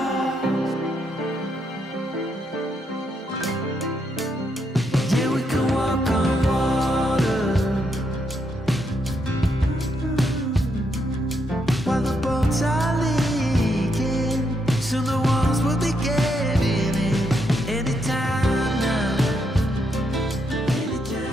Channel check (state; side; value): normal; both; correlation 0.79